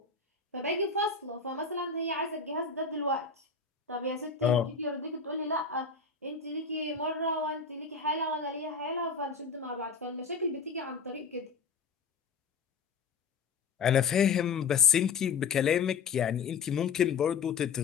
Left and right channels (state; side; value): quieter; right; 5.2 dB